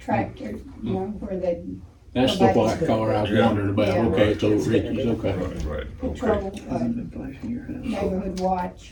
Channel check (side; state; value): both; identical; correlation 1.00